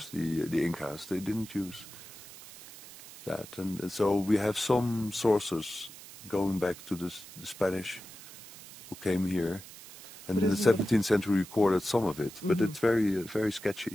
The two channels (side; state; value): right; noise; hiss, 16 dB below the sound